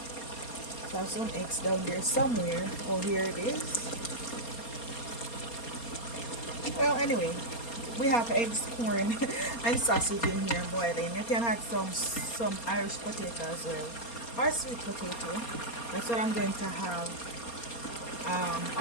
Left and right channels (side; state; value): right; late; 4.3 ms